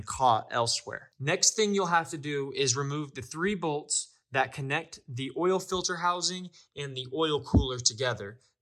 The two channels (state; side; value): identical; both; correlation 1.00